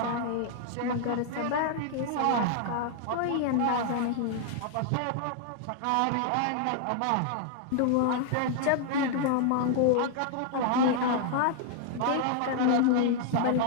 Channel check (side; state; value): both; different; correlation 0.00